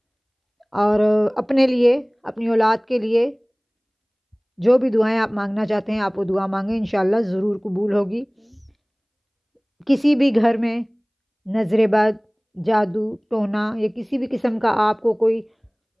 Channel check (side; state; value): both; identical; correlation 1.00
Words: اور اپنے لیے، اپنی اولاد کے لیے جو بھی دعائیں آپ مانگنا چاہتے ہیں آپ وہ دعا مانگیں، انشاءاللہ ضرور قبول ہوگی۔ کسی بھی گھر میں نظر بد، جادو ٹونا یا کسی بھی قسم کا آپ کو کوئی